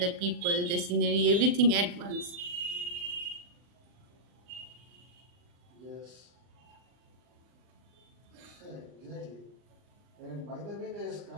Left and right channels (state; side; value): late; left; 40 ms